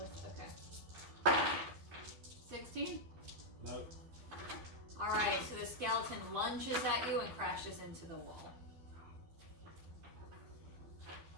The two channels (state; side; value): late; left; 12 ms